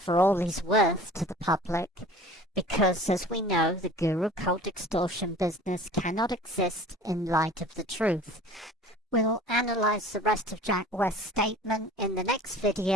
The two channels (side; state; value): both; normal; correlation 0.44